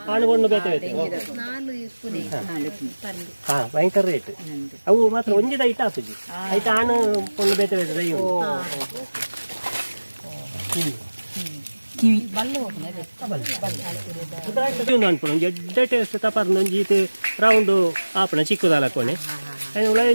ಆಣುಗೊಂಡು ಬೇತೆ ಬೇತೆ ಭಯಂಕರ ರೇಟ್ ಅವು ಮಾತ್ರ ಒಂಜಿ ದೈ ಆಪುಜಿ ಆಯ್ತು ಆಣು ಕೊಂಡು ಬೇತೆ ಬೇತೆ ದೈ ಅನ್ಪುಣ ಎಡ್ಡೆ ಟೇಸ್ಟ್ ತಪರ್ನ ಒಂಜಿ ಈತೆ ರೌಂಡು ಆಪಣ ಚಿಕ್ಕದಾಲಕ್ಕೋಣೆ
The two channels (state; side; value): inverted; both; correlation -1.00